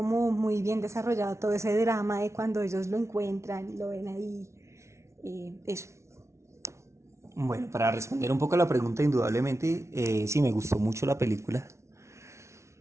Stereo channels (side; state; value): left; late; 0.13 ms